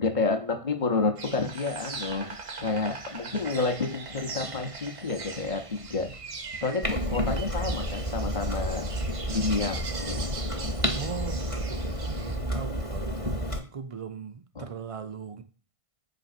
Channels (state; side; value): late; left; 1.5 ms